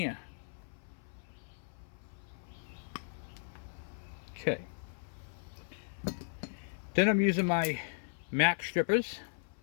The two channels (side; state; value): right; silent; 53 dB below the other